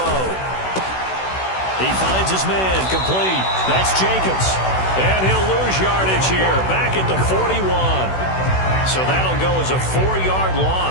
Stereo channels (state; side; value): late; right; 16 ms